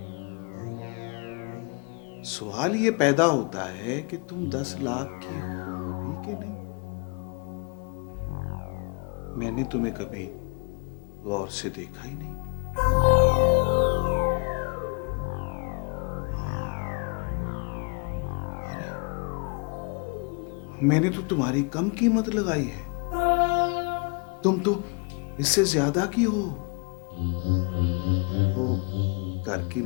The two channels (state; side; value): quieter; right; 35.5 dB